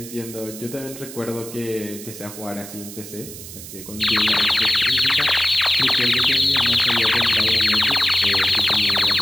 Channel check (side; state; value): right; noise; hiss, 13 dB below the sound